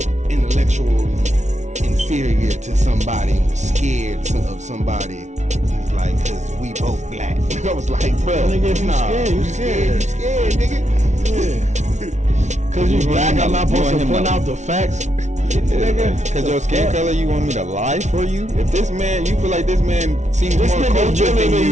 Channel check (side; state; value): left; late; 0.33 ms